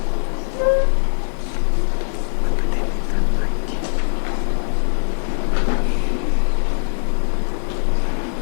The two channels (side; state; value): right; silent; digital silence